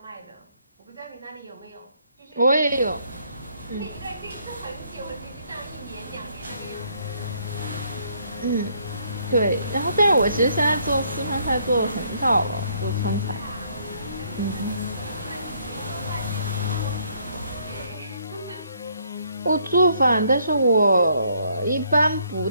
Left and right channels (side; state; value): both; inverted; correlation -0.68